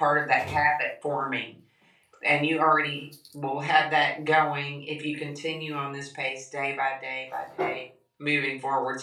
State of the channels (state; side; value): identical; both; correlation 1.00